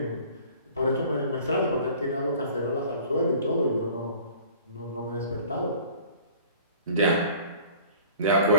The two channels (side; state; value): both; inverted; correlation -0.48